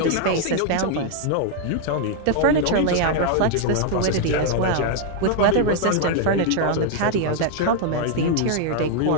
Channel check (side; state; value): both; different; correlation 0.00